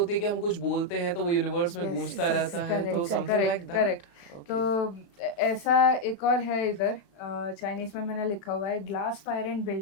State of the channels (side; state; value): right; late; 35 ms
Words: है कि हम कुछ बोलते हैं तो वो यूनिवर्स में Yes, गूंजता yes, रहता है, तो correct, something like correct, that. correct. तो ऐसा एक और है इधर, चाइनीज में मैंने लिखा हुआ है ग्लास फायर एंड